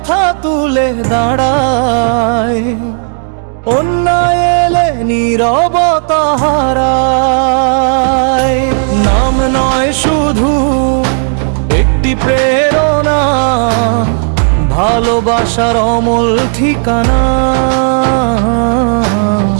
তুলে দাঁড়ায়, অন্যায় এলে নীরবতা হারায়। নাম নয় শুধু একটি প্রেরণা, ভালোবাসার অমল ঠিকানা।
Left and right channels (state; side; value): silent; left; digital silence